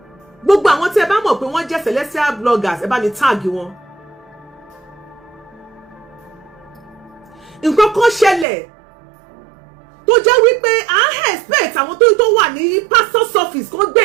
Gbogbo àwọn tí ẹ bá mọ̀ pé wọ́n jẹ́ Celestia bloggers ẹ bá mi tag wọn. Nǹkan kan ṣẹlẹ̀ tó jẹ́ wípé à expect àwọn tó wà ní pastor's office kó gbé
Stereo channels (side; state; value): left; drops out; at 8.5 s